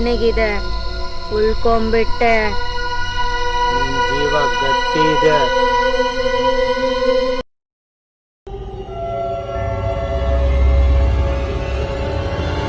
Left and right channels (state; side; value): identical; both; correlation 1.00